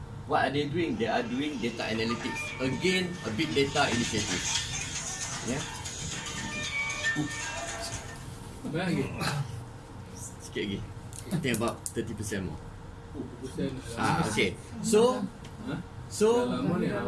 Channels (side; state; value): both; identical; correlation 1.00